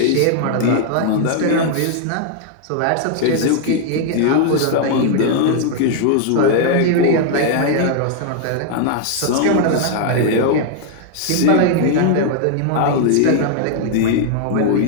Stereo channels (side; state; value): both; different; correlation 0.00